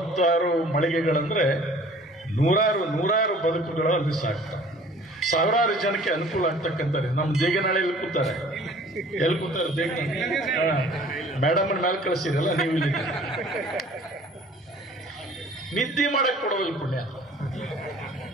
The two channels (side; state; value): both; normal; correlation 0.50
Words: ಮಳಿಗೆಗಳಂದ್ರೆ 100 ಬದುಕುಗಳು ಅಲ್ಲಿ ಸಾಕ್ತವೆ. 1000 ಜನಕ್ಕೆ ಅನುಕೂಲ ಆಗ್ತಕ್ಕಂಥದ್ದು. ನಮ್ಮ ದೇಗನಾಳೆಯಲ್ಲಿ ಕೂತಾರೆ. ಎಲ್ಲಿ ಕೂತಾರೆ? ದೇಗನಾಳೆ ಮೇಡಮ್ ಮೇಲೆ ಕಳಿಸಿರಲ್ಲ ನೀವು. ಇಲ್ಲಿ ನಿದ್ದೆ ಮಾಡಕ್ ಕೊಡೋದಿಲ್ಲ ಪುಣ್ಯ.